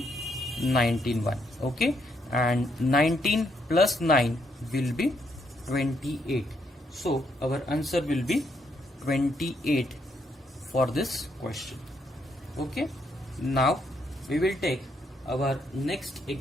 19 1. Okay, and 19 plus 9 will be 28. So our answer will be 28 for this question. Okay, now we will take our next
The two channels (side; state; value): both; normal; correlation 0.75